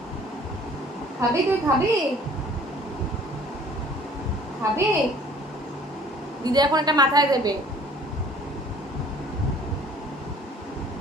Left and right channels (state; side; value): normal; both; correlation 0.53